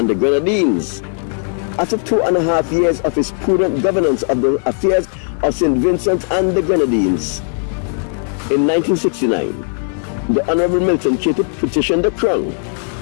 the Grenadines. After 2.5 years of his prudent governance of the affairs of St. Vincent and the Grenadines, in 1969, the Honorable Milton Cato petitioned the crown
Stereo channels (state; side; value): silent; right; 59 dB below the other